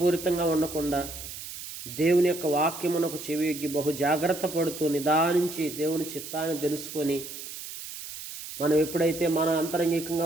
ఉండకుండా, దేవుని యొక్క వాక్యమునకు చెవియొగ్గి బహు జాగ్రత్త పడుతూ నిదానించి దేవుని చిత్తాన్ని తెలుసుకొని, మనం ఎప్పుడైతే మన అంతరంగికంగా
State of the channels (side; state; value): right; noise; hiss, 11 dB below the sound